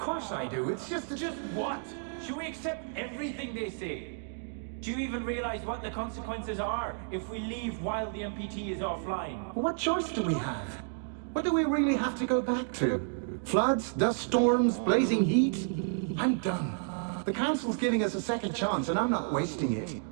I do, it's just... Just what? Should we accept everything they say? Do you even realize what the consequences are if we leave while the MPT is offline? What choice do we have? What do we really have to go back to? Floods, dust storms, blazing heat? I'm done. The Council's giving us a second chance, and I'm not wasting it.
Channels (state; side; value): silent; left; digital silence